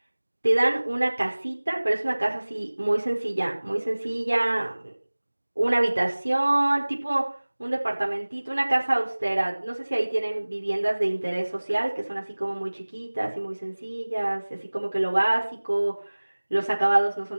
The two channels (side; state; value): both; inverted; correlation -1.00